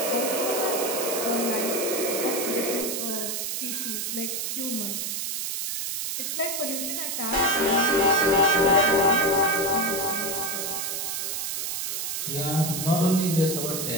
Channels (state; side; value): noise; right; hiss, 2 dB below the sound